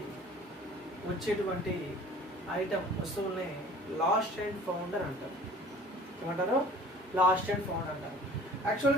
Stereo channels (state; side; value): normal; both; correlation 0.48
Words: వచ్చేటువంటి ఐటమ్ వస్తువుల్ని లాస్ట్ అండ్ ఫౌండ్ అని అంటారు. ఏమంటారు? లాస్ట్ అండ్ ఫౌండ్ అంటారు.